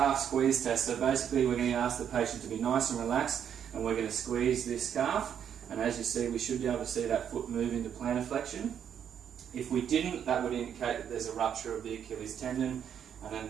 squeeze test. So basically we're going to ask the patient to be nice and relaxed, and we're going to squeeze this calf, and as you see we should be able to see that foot move into plantar flexion. If we didn't, that would indicate that there's a rupture of the Achilles tendon, and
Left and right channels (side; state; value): left; quieter; 8.7 dB